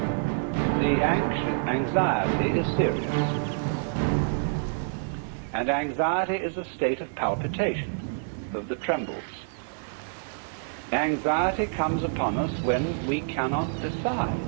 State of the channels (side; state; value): left; silent; digital silence